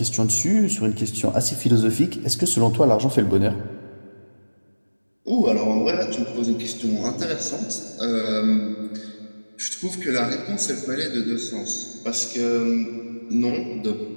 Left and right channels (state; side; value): inverted; both; correlation -1.00